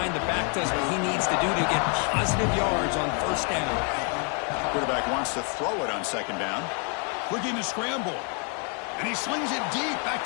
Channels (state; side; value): quieter; right; 38.9 dB